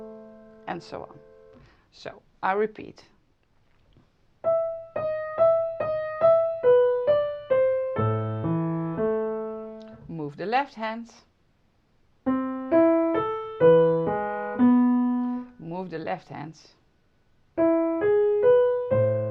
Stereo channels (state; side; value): identical; both; correlation 1.00